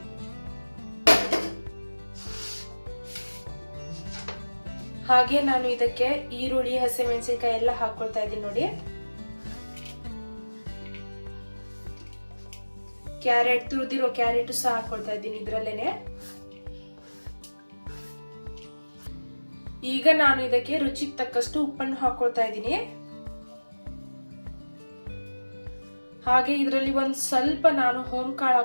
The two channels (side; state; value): both; inverted; correlation -1.00